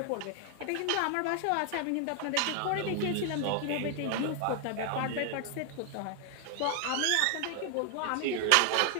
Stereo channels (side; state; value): both; different; correlation 0.00